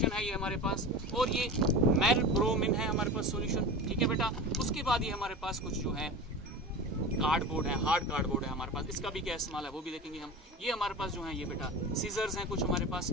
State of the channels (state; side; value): normal; both; correlation 0.30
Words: है ये हमारे पास। और ये मेलब्रोमिन है हमारे पास सॉल्यूशन, ठीक है बेटा। उसके बाद ये हमारे पास कुछ जो है कार्डबोर्ड है, हार्ड कार्डबोर्ड है हमारे पास, इसका भी क्या इस्तेमाल है वो भी देखेंगे हम। ये हमारे पास जो है ये बेटा सीजर्स हैं कुछ हमारे पास,